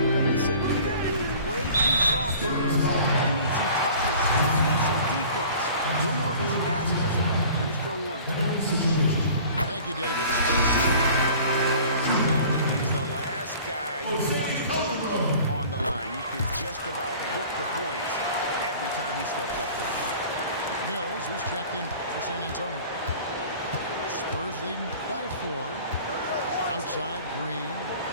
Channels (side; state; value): both; inverted; correlation -0.46